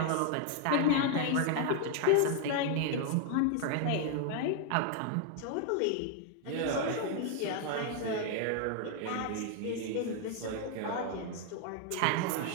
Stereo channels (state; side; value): different; both; correlation 0.00